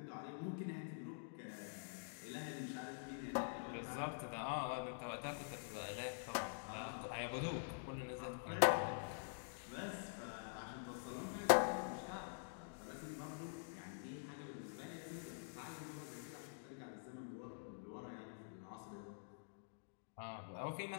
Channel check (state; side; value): silent; right; digital silence